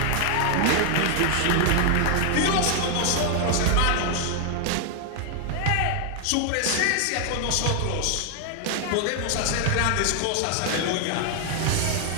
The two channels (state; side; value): different; both; correlation 0.00